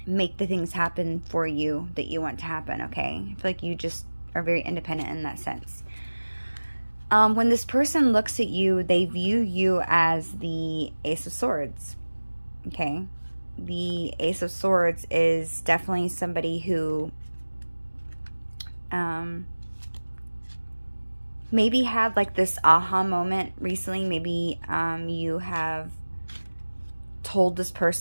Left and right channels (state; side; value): inverted; both; correlation -1.00